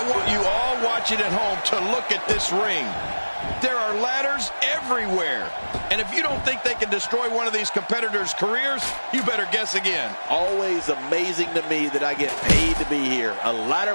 want you all watching at home to look at this ring. There are ladders everywhere. And if you don't think they can destroy one of these competitors' careers, you better guess again. Always amazing to me that I get paid to be here. A ladder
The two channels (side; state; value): both; inverted; correlation -1.00